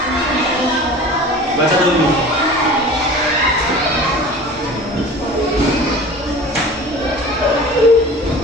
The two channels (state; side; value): normal; both; correlation 0.39